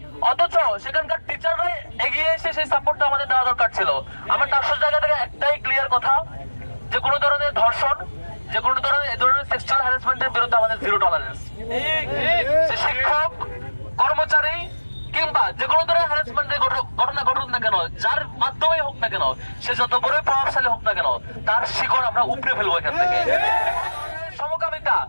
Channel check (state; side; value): inverted; both; correlation -1.00